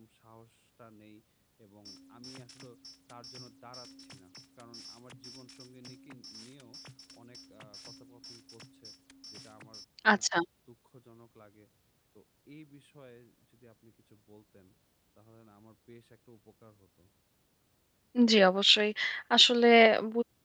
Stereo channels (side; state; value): both; identical; correlation 1.00